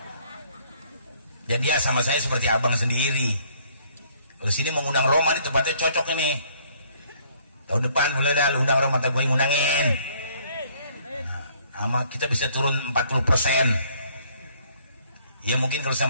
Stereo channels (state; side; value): inverted; both; correlation -0.63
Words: Dan dia sama saya seperti abang sendiri. Kalau sini mengundang Roma di tempatnya cocok ini. Tahun depan boleh dah undang Roma, tak gue ngundangin. Nah, kita bisa turun 40%. Ya mungkin kalau